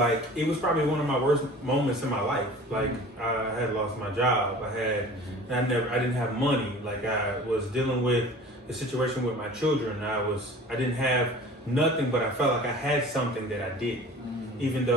it was probably one of my worst moments in my life. Like, I had lost my job. I didn't have money. Like, I was dealing with the situation with my children. I didn't have nothing, but I felt like I had something that I didn't, even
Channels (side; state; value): both; normal; correlation 0.43